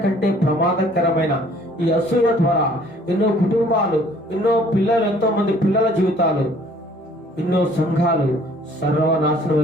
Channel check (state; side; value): normal; both; correlation 0.57